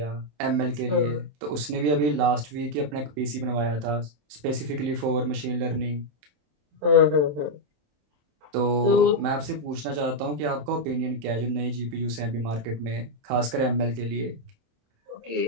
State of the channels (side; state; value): left; late; 27 ms